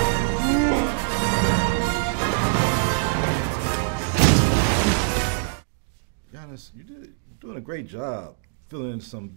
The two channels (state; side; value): silent; left; digital silence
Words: Giannis, you're doing a great job filling some